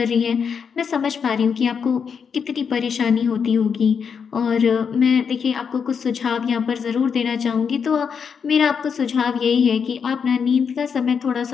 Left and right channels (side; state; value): right; quieter; 6.5 dB